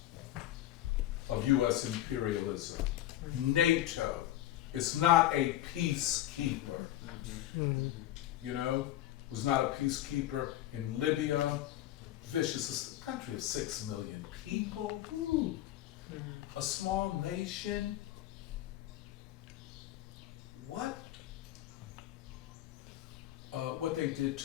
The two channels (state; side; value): quieter; right; 13.7 dB